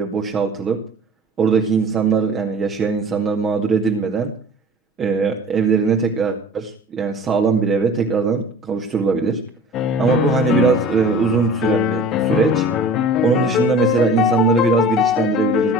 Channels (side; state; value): both; normal; correlation 0.42